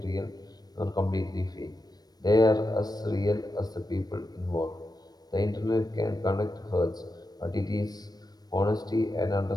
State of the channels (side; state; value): right; late; 0.19 ms